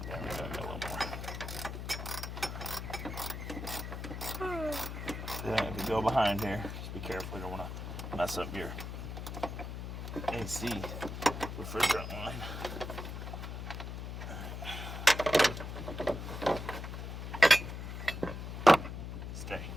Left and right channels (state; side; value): noise; left; hum, 6 dB below the sound